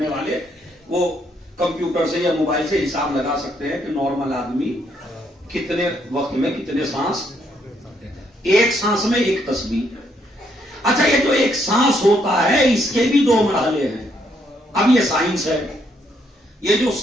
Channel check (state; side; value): normal; both; correlation 0.73